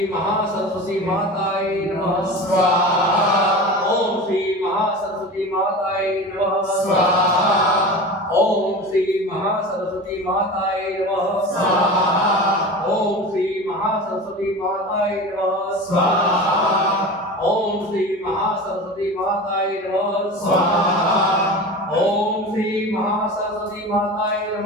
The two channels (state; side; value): normal; both; correlation 0.32